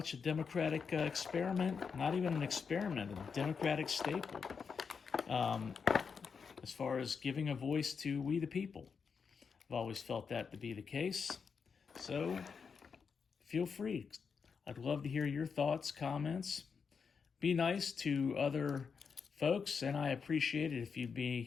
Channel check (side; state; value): right; quieter; 5.9 dB